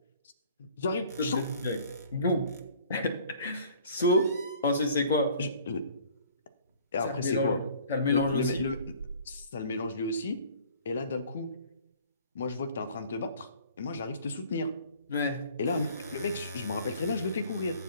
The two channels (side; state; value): both; inverted; correlation -0.52